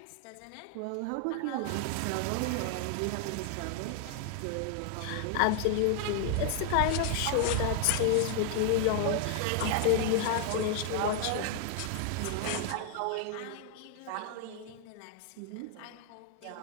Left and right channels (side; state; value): both; different; correlation 0.00